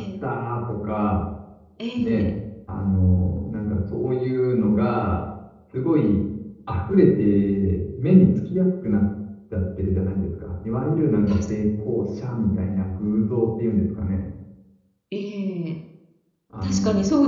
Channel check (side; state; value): both; identical; correlation 1.00